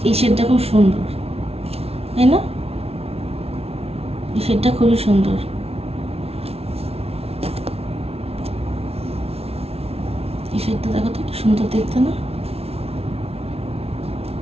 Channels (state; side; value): late; left; 0.30 ms